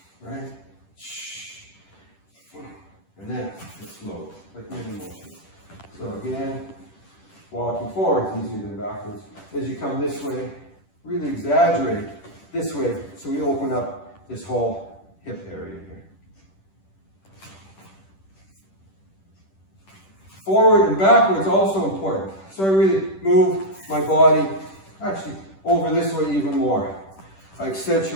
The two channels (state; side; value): late; right; 10 ms